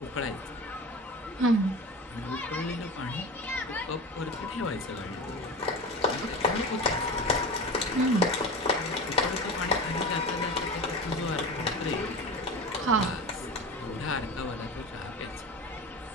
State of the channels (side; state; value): both; normal; correlation 0.30